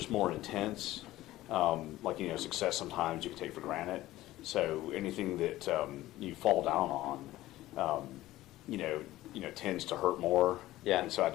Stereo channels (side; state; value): right; quieter; 16.1 dB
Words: more intense. Like, success sometimes you can take for granted. So anything that you fall down on, tends to hurt more. Yeah. And so I